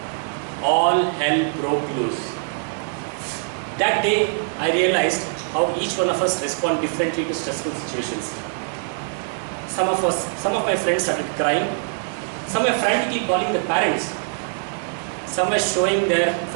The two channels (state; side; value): silent; left; 62 dB below the other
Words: All hell broke loose. That day, I realized how each one of us respond differently to stressful situations. Some of my friends started crying. Some were frantically calling their parents. Some were showing their